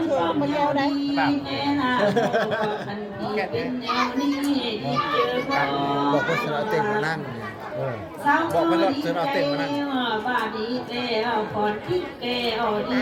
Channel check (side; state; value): both; identical; correlation 1.00